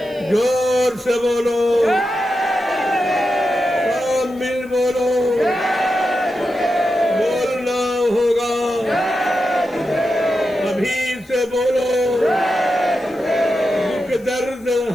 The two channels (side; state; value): left; noise; hiss, 28 dB below the sound